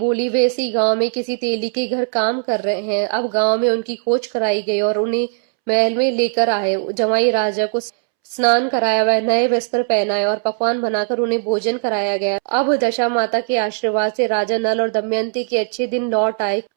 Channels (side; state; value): left; silent; 67 dB below the other